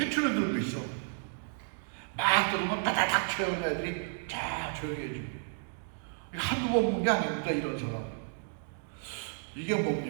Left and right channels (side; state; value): left; silent; digital silence